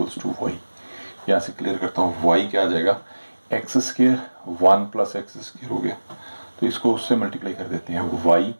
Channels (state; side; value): inverted; both; correlation -1.00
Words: टू वाई, यहाँ से क्लियर करता हूँ। वाई क्या आ जाएगा, X square 1 plus X square हो गया, तो इसको उससे मल्टीप्लाई कर देते हैं, Y